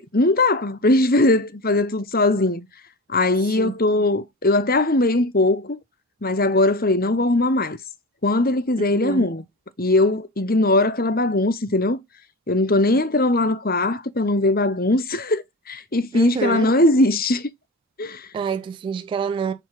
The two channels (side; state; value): both; normal; correlation 0.28